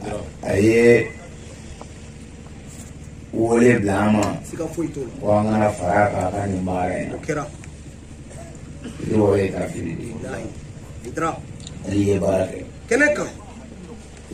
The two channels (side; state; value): both; identical; correlation 1.00